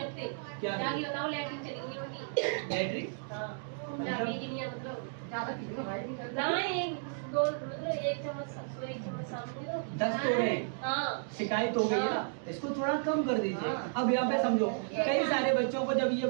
क्या बैटरी दस तोड़े शिकायत हो गई है ना, इसको थोड़ा कम कर दीजिए। अब यहाँ पे समझो कई सारे बच्चों को जब ये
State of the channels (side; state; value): left; silent; digital silence